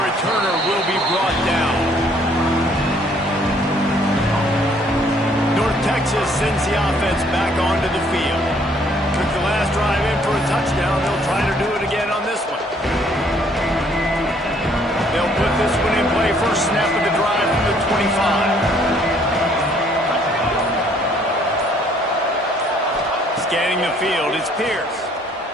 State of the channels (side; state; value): both; normal; correlation 0.63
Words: will be brought down. North Texas sends the offense back onto the field. Took the last drive in for a touchdown. They'll try to do it again on this one. They'll put this one in play. First snap of the drive from the 25. Scanning the field, it's Pierce.